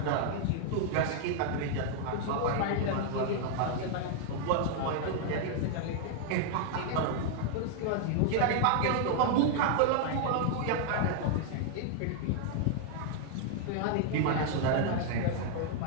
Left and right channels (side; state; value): both; different; correlation 0.00